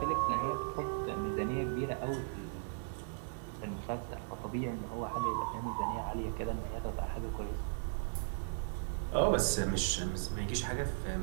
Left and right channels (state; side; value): silent; left; digital silence